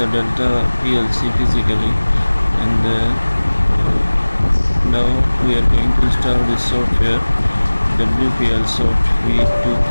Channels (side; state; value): both; inverted; correlation -1.00